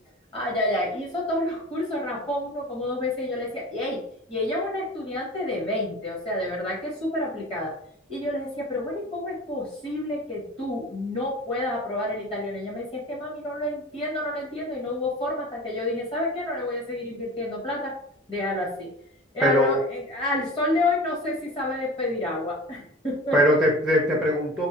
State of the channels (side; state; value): both; normal; correlation 0.37